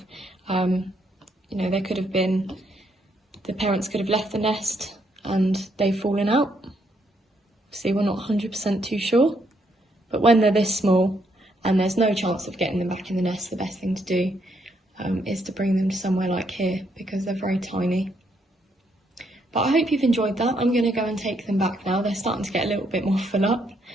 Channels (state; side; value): normal; both; correlation 0.74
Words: have, you know, there could have been, the parents could have left the nest and they've fallen out. See, we're not 100% too sure. But when they're this small and there's no chance of getting them back in the nest, the best thing to do is to bring them to somewhere like here, because they're very tiny. But I hope you've enjoyed that. I'm going to go and take them back now. They're starting to get a little bit more full up,